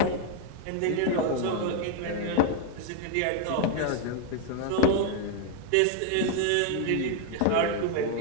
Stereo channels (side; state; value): both; different; correlation 0.00